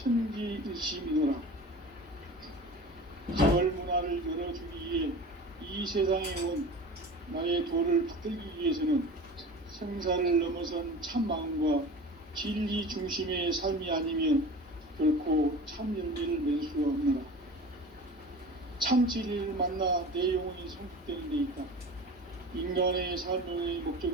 가을 문화를 열어주기 위해 이 세상에 온 나의 도를 받들기 위해서는 생사를 넘어선 참 마음과 진리 중심의 삶이 아니면 결코 참 열매를 맺을 수가 없노라. 참 진리를 만나 내 영혼이 성숙되는 데 있다. 인간의 삶의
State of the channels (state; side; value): normal; both; correlation 0.36